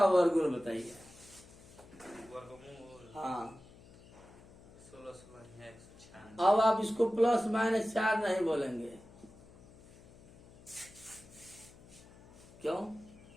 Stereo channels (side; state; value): left; noise; hum, 22 dB below the sound